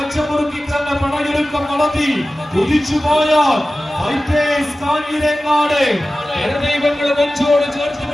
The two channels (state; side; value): normal; both; correlation 0.96